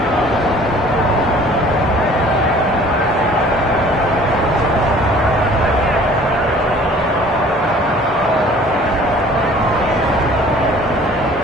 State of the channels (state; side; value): normal; both; correlation 0.51